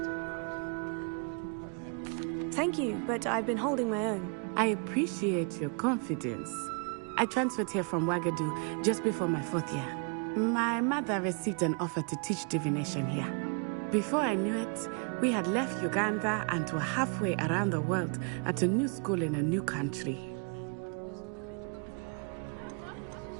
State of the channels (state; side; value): quieter; left; 38.0 dB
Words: Thank you, but I've been holding my own. I appreciate your confidence. I transferred here from Wagadu just before my 4th year. My mother received an offer to teach divination here. Before I knew it, we had left Uganda and were halfway around the world at a new school in a new country.